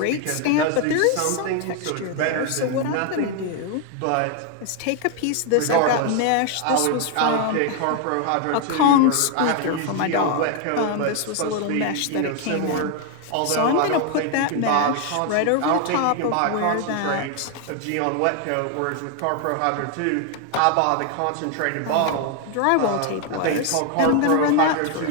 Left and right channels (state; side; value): different; both; correlation 0.01